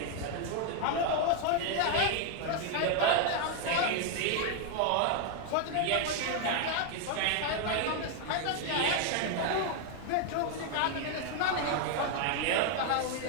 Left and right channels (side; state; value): both; different; correlation 0.01